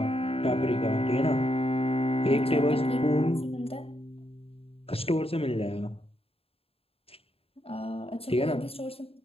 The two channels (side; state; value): right; late; 0.28 ms